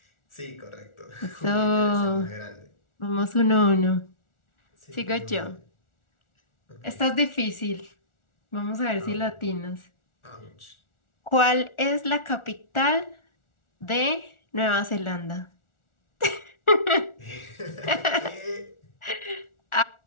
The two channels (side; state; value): right; late; 1.4 ms